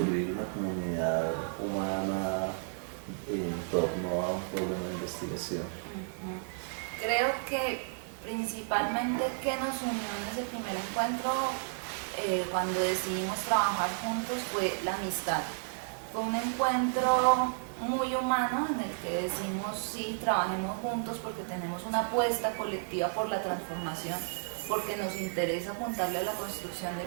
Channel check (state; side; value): silent; left; digital silence